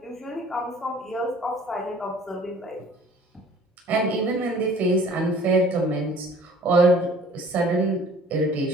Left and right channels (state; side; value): normal; both; correlation 0.51